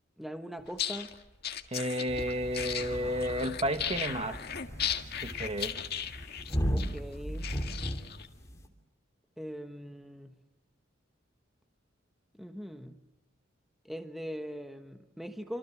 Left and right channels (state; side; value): normal; both; correlation 0.51